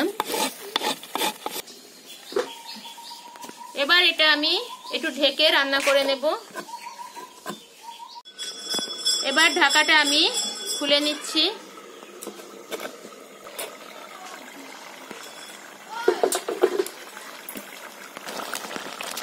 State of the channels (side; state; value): both; identical; correlation 1.00